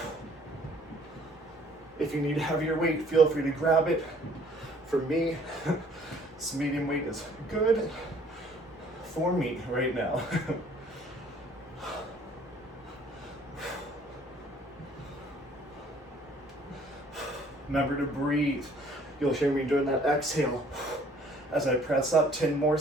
If you need heavier weight, feel free to grab it. For me, this medium weight is good for me right now. Remember to breathe. You'll hear me doing that exhale as I press up, 10 more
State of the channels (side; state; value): both; normal; correlation 0.58